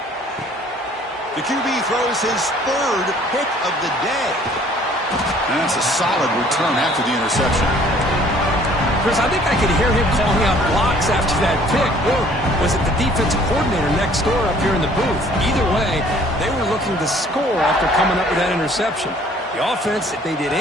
The QB throws his 3rd pick of the day. And that's a solid return after the interception. Chris, I think I could hear him calling out blocks after that pick. Or was it the defensive coordinator next door up here in the booth? Either way, they were looking to score after coming up with that interception. The offense, if they did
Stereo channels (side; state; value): both; normal; correlation 0.56